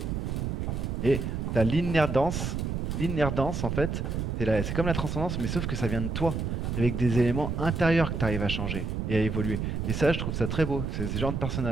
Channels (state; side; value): noise; right; rumble, 2 dB below the sound